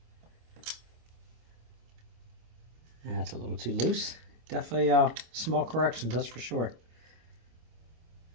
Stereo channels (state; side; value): late; left; 25 ms